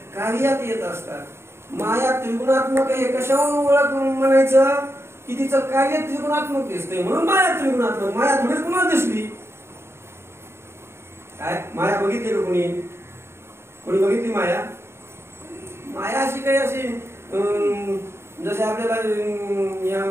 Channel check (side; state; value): left; late; 0.12 ms